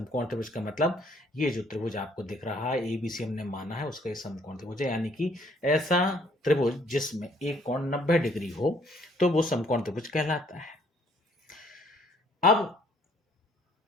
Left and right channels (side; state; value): both; normal; correlation 0.63